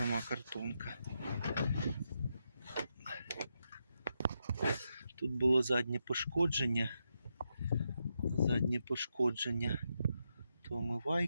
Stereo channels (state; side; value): inverted; both; correlation -0.84